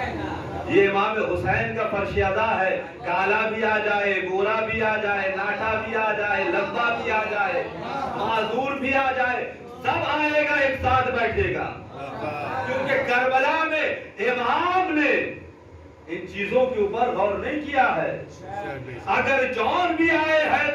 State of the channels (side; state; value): both; identical; correlation 1.00